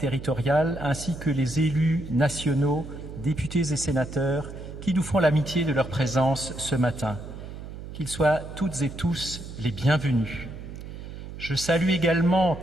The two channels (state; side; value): noise; right; hum, 11 dB below the sound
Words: ainsi que les élus nationaux, députés et sénateurs, qui nous font l'amitié de leur présence ce matin. Qu'ils soient toutes et tous les bienvenus. Je salue également